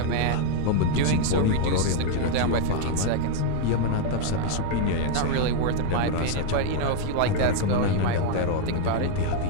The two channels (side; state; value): both; different; correlation 0.00